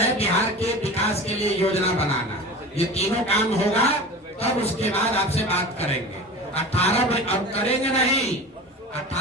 बिहार के विकास के लिए योजना बनाना। ये तीनों काम होगा तब उसके बाद आपसे बात करेंगे। 18 अब करेंगे नहीं,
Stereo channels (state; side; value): normal; both; correlation 0.34